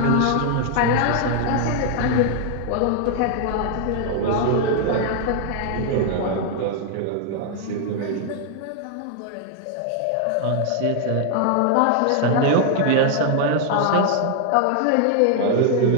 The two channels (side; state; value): both; different; correlation 0.00